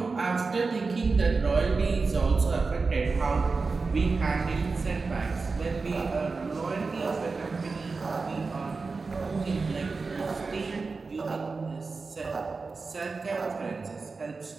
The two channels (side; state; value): left; quieter; 4.2 dB